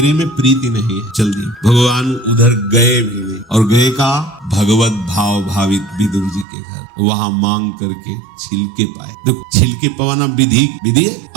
में प्रीति नहीं है, चल दी। भगवान उधर गए भी नहीं, और गए का भगवत भाव भावित विदुर जी के घर, वहां मांग करके छिलके पाए। देखो छिलके पवाना विधि है,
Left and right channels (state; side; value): drops out; left; at 6.5 s